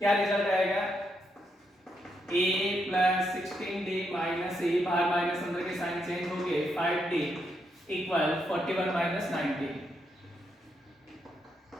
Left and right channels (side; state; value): both; normal; correlation 0.79